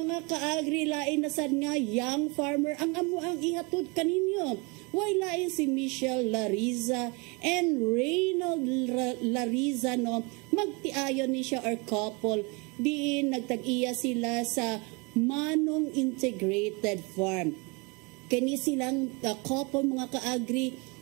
ka-agri lain na sad nga young farmer ang amo ang ihatod kaninyo. Wala si Michelle Lariza and Reynald Lariza no magtiayon ni siya or couple diin nagtag-iya sila sa Manong Integrated Farm. Kani silang couple mga ka-agri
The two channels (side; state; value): left; quieter; 29.0 dB